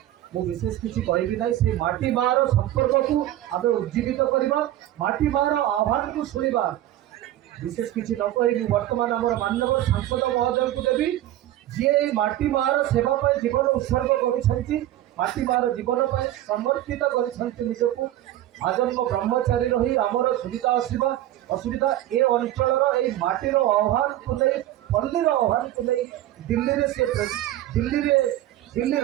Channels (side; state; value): left; quieter; 13.7 dB